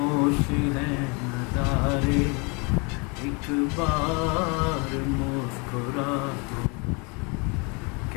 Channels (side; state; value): right; quieter; 31.3 dB